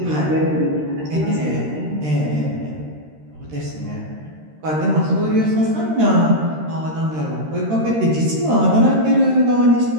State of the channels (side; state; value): left; late; 13 ms